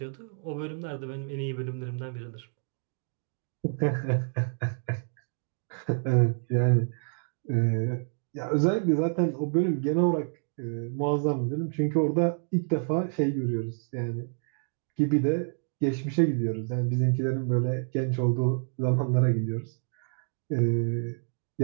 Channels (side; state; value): left; silent; digital silence